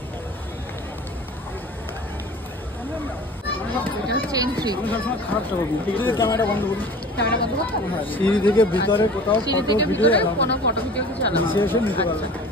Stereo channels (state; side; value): normal; both; correlation 0.41